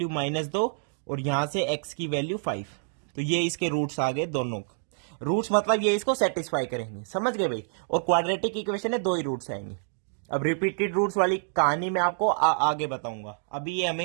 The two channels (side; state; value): left; silent; digital silence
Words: -2 और यहां से x की वैल्यू 5। तो ये इसके रूट्स आ गए दोनों। रूट्स मतलब ये इसको सेटिस्फाई करेंगे, समझ गए भाई। और क्वाड्रेटिक इक्वेशन है, 2 ही रूट्स आएंगे। अब रिपीटेड रूट्स वाली कहानी मैं आपको आगे बताऊंगा। अभी ये